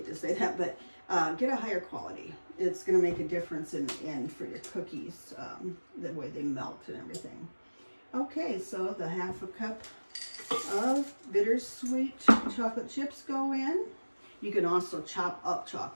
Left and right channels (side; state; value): both; inverted; correlation -1.00